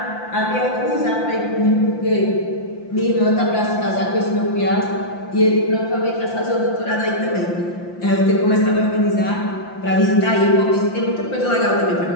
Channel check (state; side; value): late; right; 5.8 ms